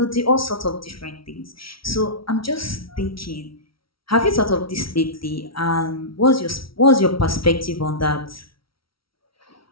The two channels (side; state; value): right; late; 0.75 ms